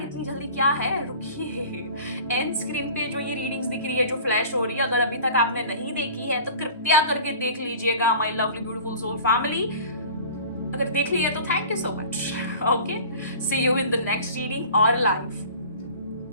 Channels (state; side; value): inverted; both; correlation -0.42